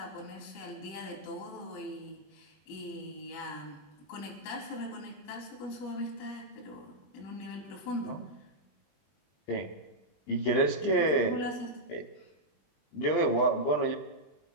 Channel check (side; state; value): right; late; 20 ms